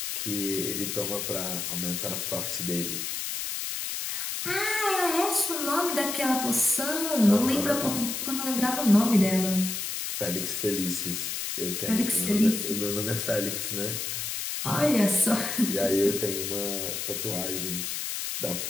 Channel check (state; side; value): noise; left; hiss, 3 dB below the sound